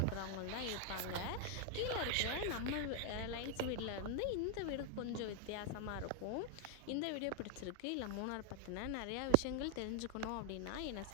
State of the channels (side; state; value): both; different; correlation 0.00